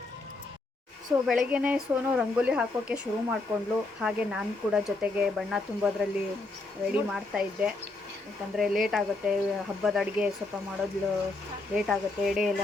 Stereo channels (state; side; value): quieter; right; 3.1 dB